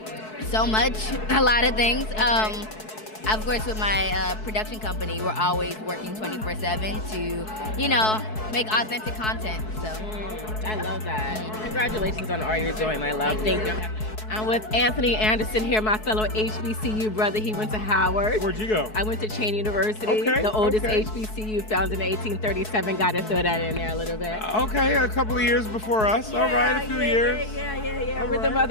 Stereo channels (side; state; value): right; late; 4.6 ms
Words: So much, a lot of things. Of course, with my production company, we're always working 24/7 to, you know, make authentic content. So I love that. Congratulations on all you're doing, my love. Thank you. I'm with Anthony Anderson here, my fellow HBCU brother. He went to Howard. Where'd you go? I went to Cheyney University, Okay, the oldest okay. HBCU, founded in 1837. Got to throw that in there a little bit. Okay, a couple of years before us. All right, a few years. Yeah. All We're the right.